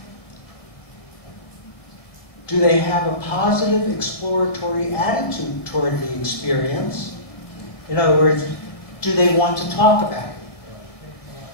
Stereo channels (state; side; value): late; right; 1.7 ms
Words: Do they have a positive exploratory attitude toward the experience? In other words, do they want to talk about it?